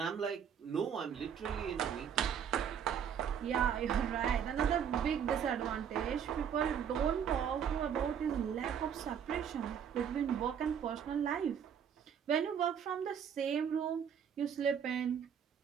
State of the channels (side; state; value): left; quieter; 8.1 dB